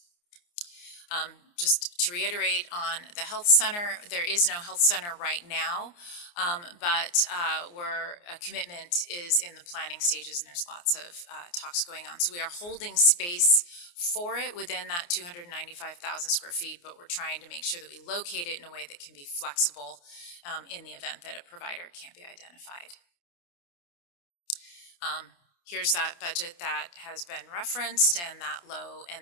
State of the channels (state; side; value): late; right; 29 ms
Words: Just to reiterate on the health center, there is no health center right now, but a commitment is in the planning stages, and there's lots of talks going on. So we are holding space for it within that 295,000 square feet, but we're trying to make sure that we locate it in a way that can be flexible in the event that a provider can't be identified. Here's that budget that has been referenced, and that low